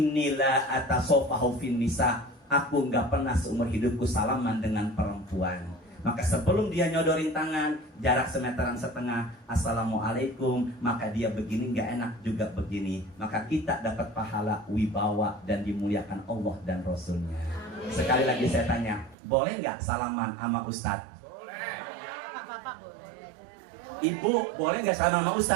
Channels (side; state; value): left; drops out; at 19.2 s